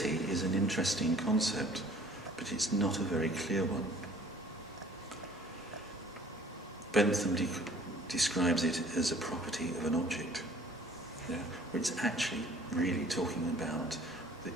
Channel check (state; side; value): normal; both; correlation 0.53